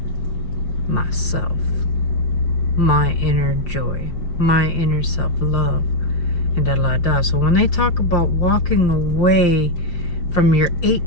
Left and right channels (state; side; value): late; right; 5.6 ms